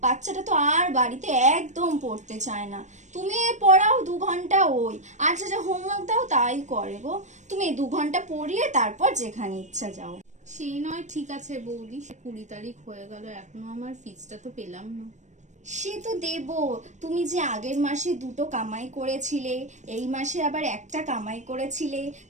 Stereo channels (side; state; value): left; late; 0.34 ms